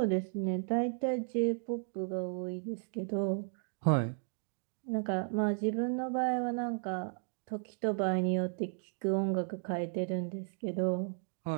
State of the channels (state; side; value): silent; left; 55 dB below the other